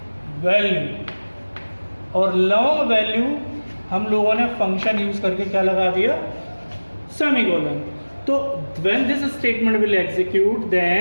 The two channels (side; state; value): both; inverted; correlation -1.00